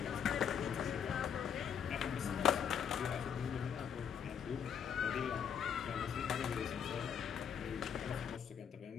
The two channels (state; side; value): quieter; right; 7.9 dB